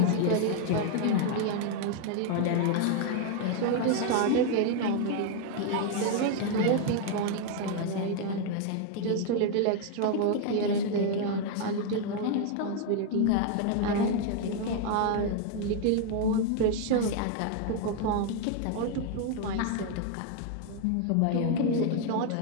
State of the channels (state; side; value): different; both; correlation 0.00